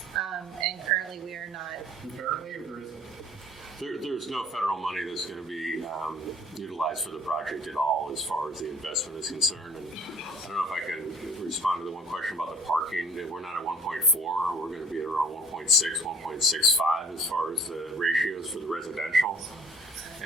And currently we are not. Apparently, or there isn't? There's no federal money that's going to be utilized for the project at all as far as the investment is concerned. And I don't know if I can respond to the one question about the parking. We're not at 1.4. We're going to be at around 1.6, 1.65 as far as the ratios for the residential.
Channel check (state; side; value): normal; both; correlation 0.52